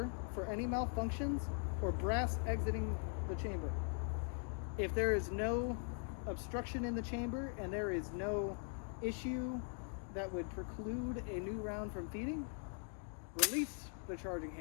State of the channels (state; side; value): silent; right; 50 dB below the other